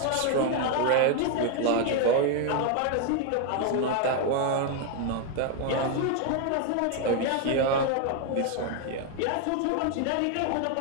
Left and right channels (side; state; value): both; different; correlation 0.01